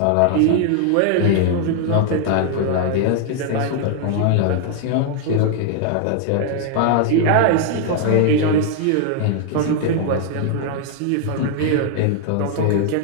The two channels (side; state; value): both; different; correlation 0.00